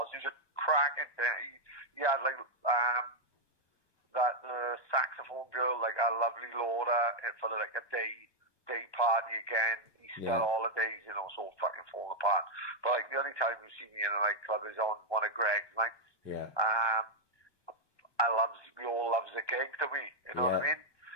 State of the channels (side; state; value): right; late; 1.2 ms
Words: He was a cracking thing. He had like that saxophone girl, like a lovely Laura, for like a day party again. Easter holidays, you know, so fucking falling apart. But like the only time you see me in a nightclub is on one of Greg's nights. Yeah. We all loves a gig, do we? You know what I mean?